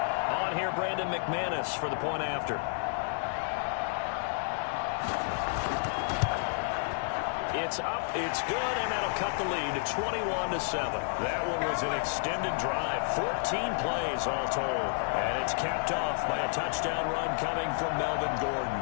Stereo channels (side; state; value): right; silent; 57 dB below the other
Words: On here, Brandon McManus for the point after. It's up, it's good, and that'll cut the lead to 21-7. That one was an extended drive, 14 plays all told. And it's capped off by a touchdown run coming from Melvin Gordon.